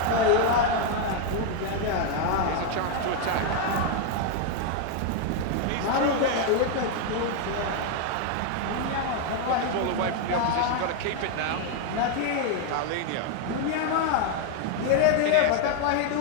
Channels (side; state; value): both; different; correlation 0.01